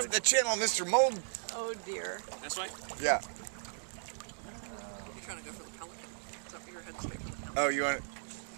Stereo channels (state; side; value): silent; left; digital silence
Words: the channel, Mr. Mold. Oh dear. This way? Yeah. You're trying to go for the pelican. It's up your head straight for the pelican. Oh, you want it?